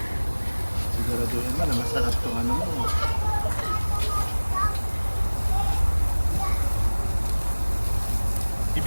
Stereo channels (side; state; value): both; inverted; correlation -1.00